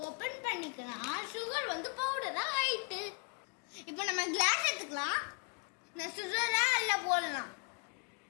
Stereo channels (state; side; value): quieter; right; 35.2 dB